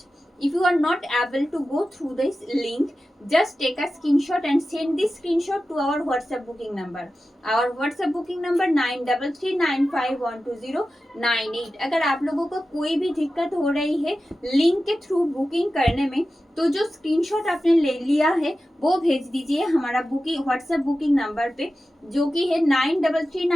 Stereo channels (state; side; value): normal; both; correlation 0.93